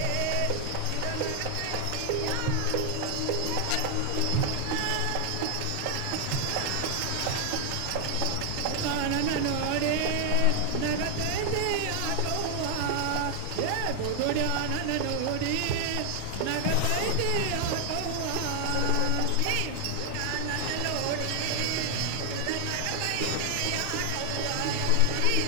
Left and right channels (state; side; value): different; both; correlation 0.00